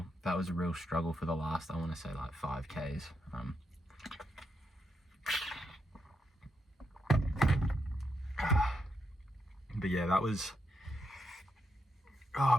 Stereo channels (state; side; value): normal; both; correlation 0.82